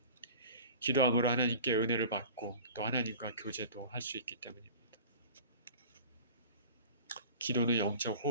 기도함으로 하나님께 은혜를 받고 또 하나님과 교제도 할 수 있기 때문입니다. 기도는 영적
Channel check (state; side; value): inverted; both; correlation -0.40